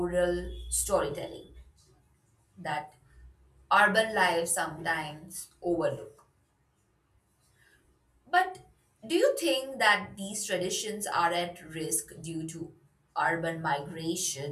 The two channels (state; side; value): identical; both; correlation 1.00